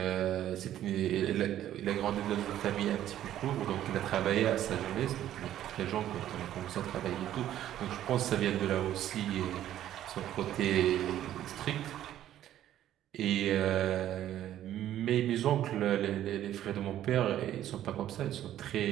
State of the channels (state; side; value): quieter; left; 12.1 dB